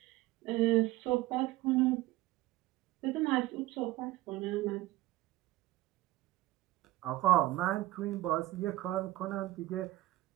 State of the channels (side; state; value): left; quieter; 17.0 dB